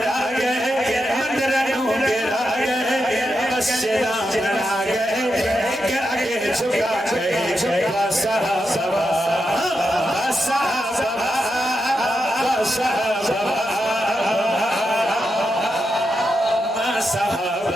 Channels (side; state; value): both; normal; correlation 0.86